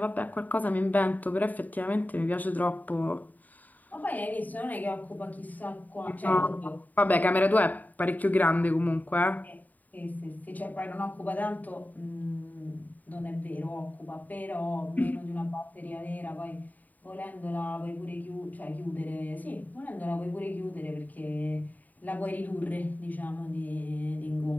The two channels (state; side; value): late; right; 0.081 ms